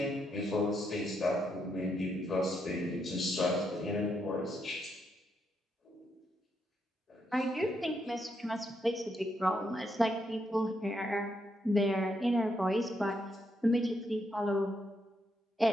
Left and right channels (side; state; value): both; normal; correlation 0.79